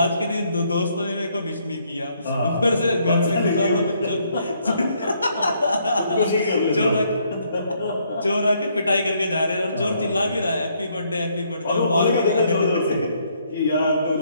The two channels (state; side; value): inverted; both; correlation -0.70